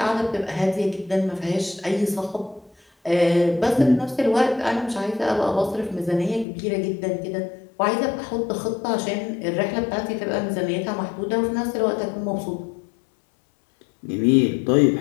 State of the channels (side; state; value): right; drops out; at 6.5 s